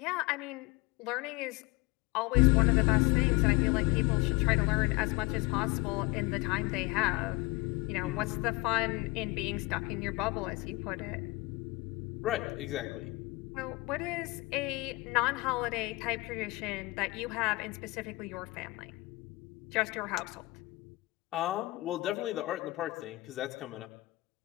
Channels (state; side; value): quieter; right; 22.9 dB